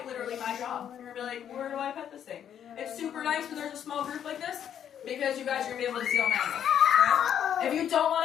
literally my job. You're going to be like, where do I pet this thing? It's super nice when there's a small group like this because you guys are going to be able to see all my animals. Right? If you don't want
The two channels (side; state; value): right; quieter; 9.4 dB